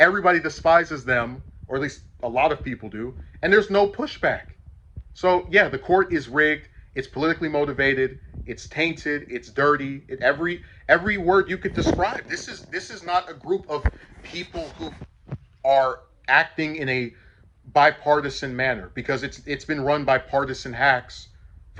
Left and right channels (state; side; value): identical; both; correlation 1.00